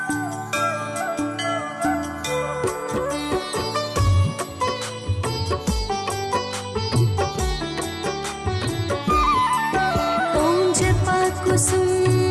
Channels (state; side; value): identical; both; correlation 1.00